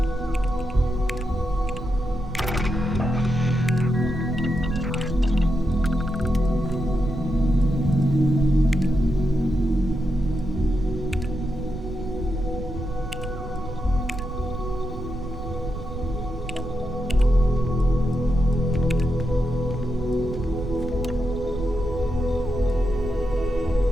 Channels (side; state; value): right; noise; rumble, 9 dB below the sound